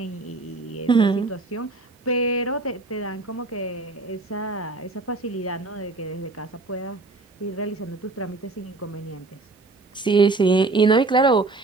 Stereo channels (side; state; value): left; quieter; 3.4 dB